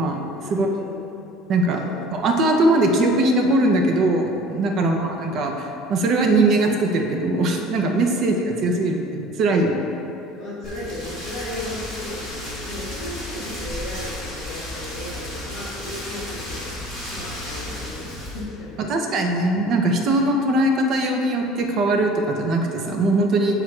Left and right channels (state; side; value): normal; both; correlation 0.47